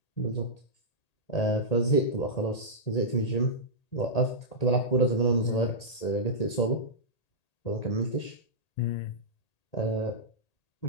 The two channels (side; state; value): right; late; 1.8 ms